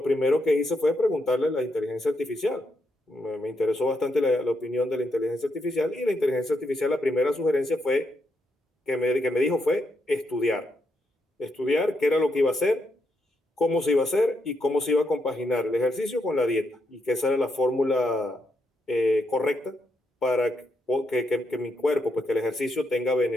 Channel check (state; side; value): normal; both; correlation 0.80